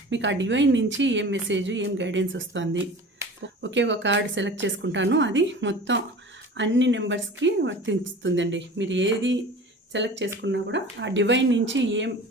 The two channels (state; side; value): normal; both; correlation 0.39